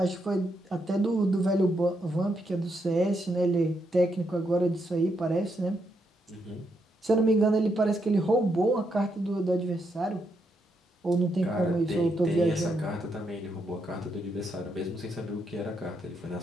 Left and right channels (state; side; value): normal; both; correlation 0.79